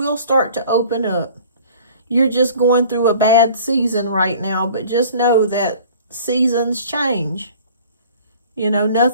start to open up. You're just going through a bad season right now, but just know that seasons change. You know,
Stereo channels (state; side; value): inverted; both; correlation -0.48